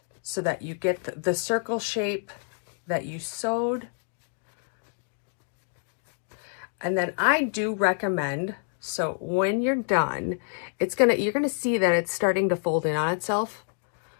so that you get the circle shape that you sewed. And then I do recommend, so when you're done, you're gonna see that it's starting to fold in on itself.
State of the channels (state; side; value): silent; right; digital silence